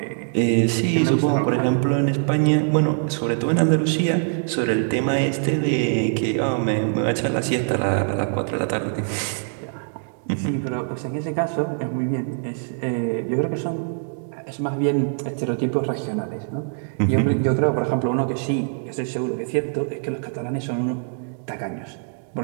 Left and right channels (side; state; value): left; silent; digital silence